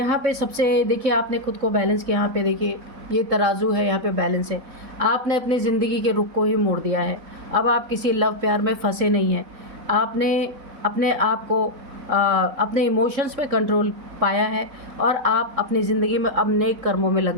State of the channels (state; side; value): late; left; 4.0 ms